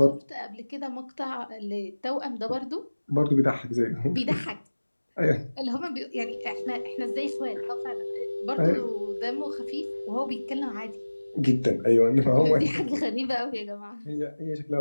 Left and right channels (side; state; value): both; inverted; correlation -1.00